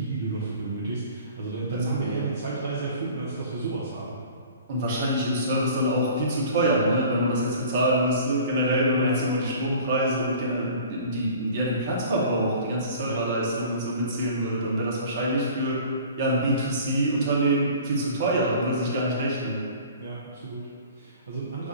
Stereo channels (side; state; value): both; inverted; correlation -0.45